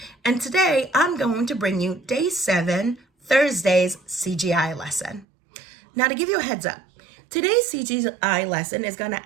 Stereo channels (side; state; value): left; drops out; at 5.2 s